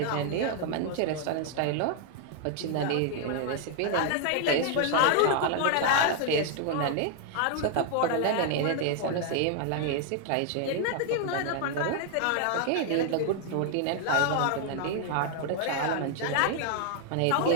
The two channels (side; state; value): both; different; correlation 0.00